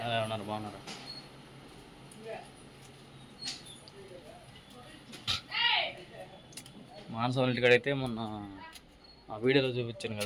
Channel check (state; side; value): identical; both; correlation 1.00